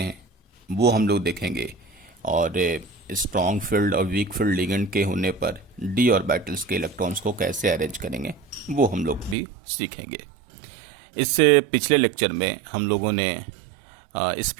वो हम लोग देखेंगे। और स्ट्रॉन्ग फील्ड और वीक फील्ड लिगेंड के होने पर डी ऑर्बिटल्स के इलेक्ट्रॉन्स को कैसे अरेंज करेंगे वो हम लोग भी सीखेंगे। इससे पिछले लेक्चर में हम लोगों ने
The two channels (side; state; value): left; drops out; at 9.3 s